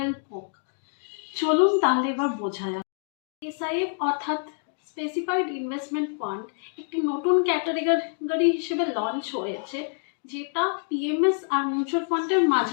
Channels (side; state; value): right; silent; 61 dB below the other